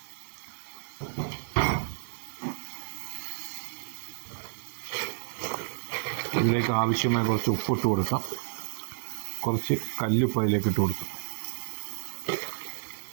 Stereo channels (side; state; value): left; silent; digital silence